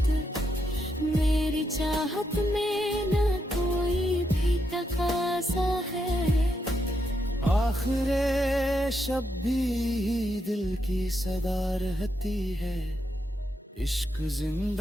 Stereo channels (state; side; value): normal; both; correlation 0.82